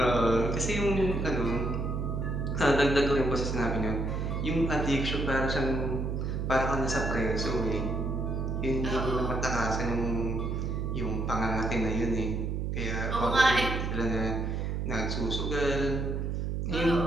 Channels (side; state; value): right; noise; hum, 1 dB below the sound